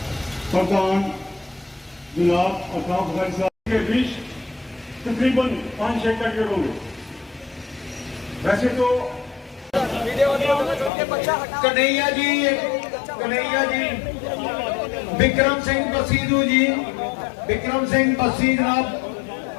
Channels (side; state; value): right; drops out; at 10.9 s